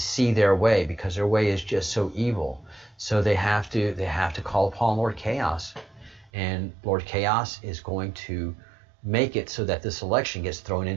their way, because their way is just so evil. So they have to call upon Lord Chaos. And Lord Chaos is going to make it so that this election gets thrown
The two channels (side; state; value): left; drops out; at 6.3 s